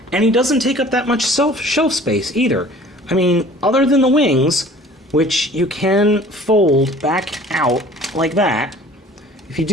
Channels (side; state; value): both; normal; correlation 0.48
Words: And he doesn't take up that much shelf space either. I mean, other than the wings, which you can fold back out like that. If you